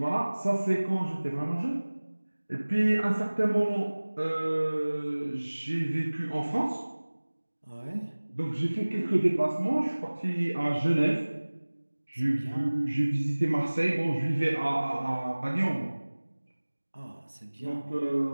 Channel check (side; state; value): both; inverted; correlation -1.00